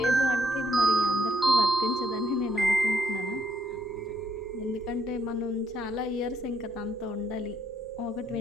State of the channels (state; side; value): normal; both; correlation 0.72